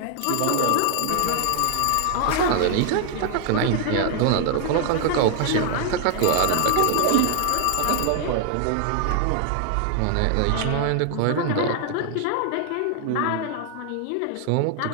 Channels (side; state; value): both; different; correlation 0.00